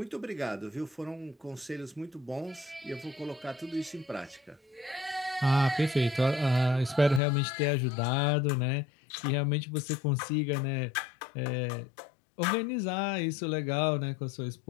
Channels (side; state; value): right; drops out; at 7.2 s